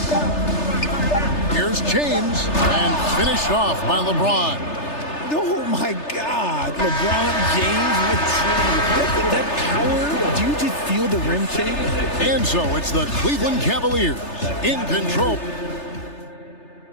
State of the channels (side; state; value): right; late; 3.3 ms